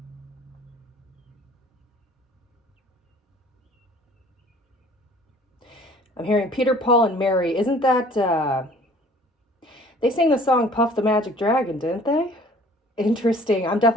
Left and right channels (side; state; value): both; normal; correlation 0.51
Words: I'm hearing Peter, Paul, and Mary. Isn't that, they sang the song Puff the Magic Dragon, didn't they? Interesting. I'm